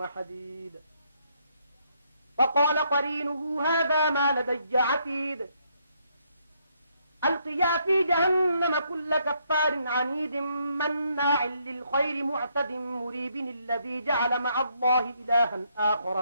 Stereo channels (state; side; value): inverted; both; correlation -0.73